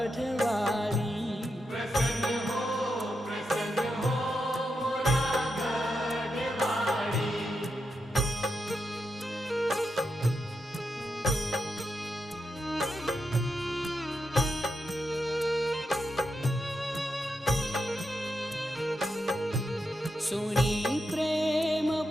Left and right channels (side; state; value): both; normal; correlation 0.85